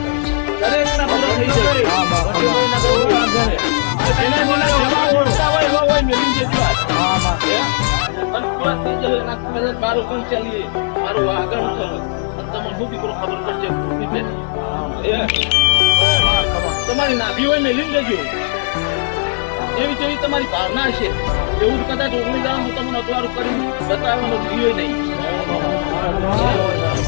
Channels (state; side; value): silent; right; 68 dB below the other